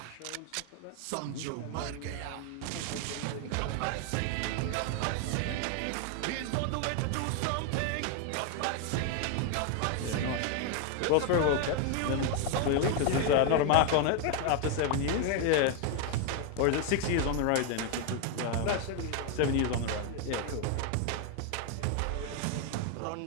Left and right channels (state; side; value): different; both; correlation 0.01